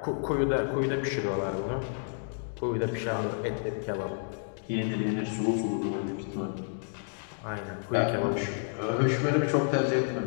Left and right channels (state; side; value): silent; right; digital silence